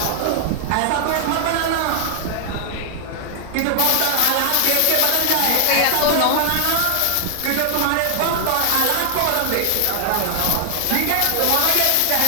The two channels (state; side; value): different; both; correlation 0.00